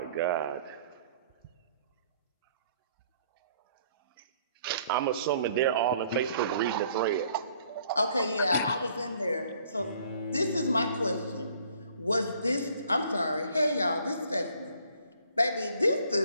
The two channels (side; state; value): both; inverted; correlation -0.60